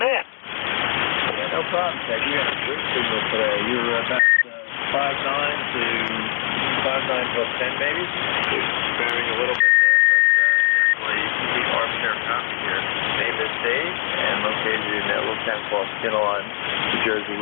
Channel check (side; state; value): right; silent; 65 dB below the other